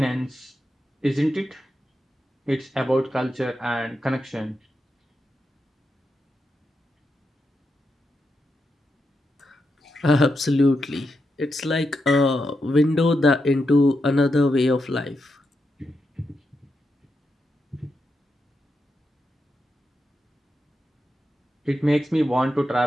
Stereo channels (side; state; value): both; normal; correlation 0.86